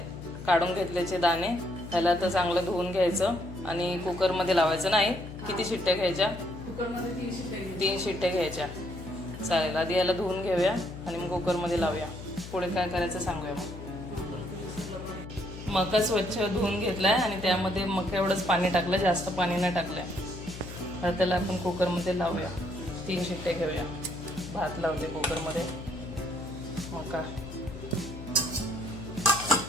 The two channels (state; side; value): noise; left; hum, 11 dB below the sound